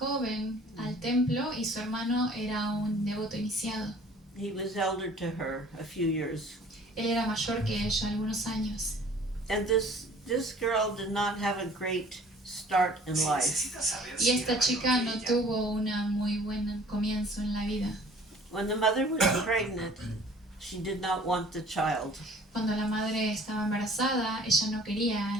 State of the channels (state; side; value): normal; both; correlation 0.51